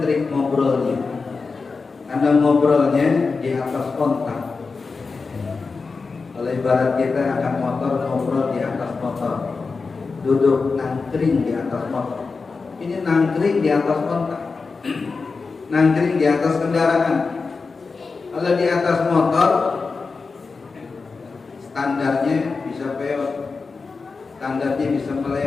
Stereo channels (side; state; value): right; quieter; 4.4 dB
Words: trik ngobrolnya, karena ngobrolnya di atas kontak. Kalau ibarat kita akan motor, ngobrol di atas motor, duduk nangkring di atas motor. Ini nangkring di atas kontak, nangkring di atas kendaraan. Kalau di atas motor, standarnya bisa peot, standarnya bisa